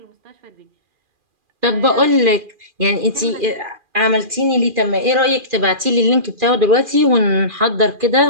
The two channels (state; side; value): late; left; 2.4 ms